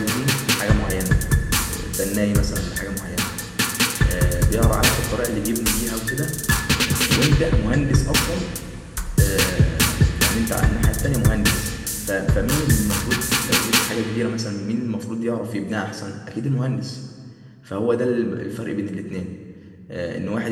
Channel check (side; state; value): both; identical; correlation 1.00